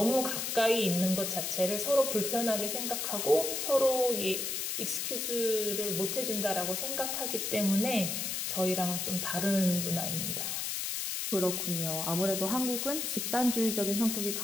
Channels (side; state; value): left; noise; hiss, 2 dB below the sound